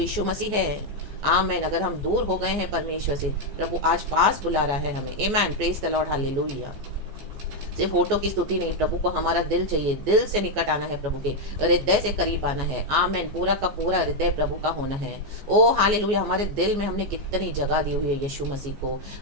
मसीह है। आमेन। अगर हम दूर हो गए हैं परमेश्वर से, प्रभु आज पास बुला रहा है हमें। आमेन, प्रेज द लॉर्ड, हालेलुया। सिर्फ होठों की स्तुति नहीं, प्रभु को हमारा दिल चाहिए, दिल से निकट आना है, प्रभु के हृदय से करीब आना है। आमेन, पूरा का पूरा हृदय प्रभु का होना है। ओ हालेलुया। हमारे दिल में हमने कितनी जगह दी हुई है यीशु मसीह को,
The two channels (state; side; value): late; left; 14 ms